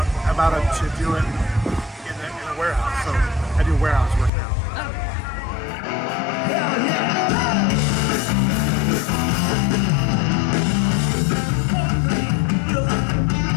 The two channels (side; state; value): right; drops out; at 4.3 s